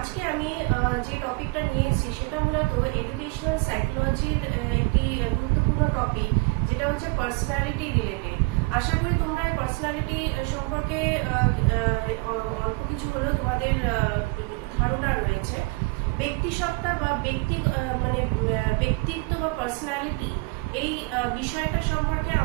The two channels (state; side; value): quieter; left; 26.4 dB